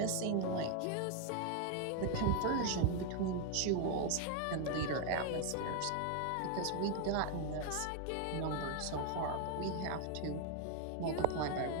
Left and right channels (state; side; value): different; both; correlation 0.01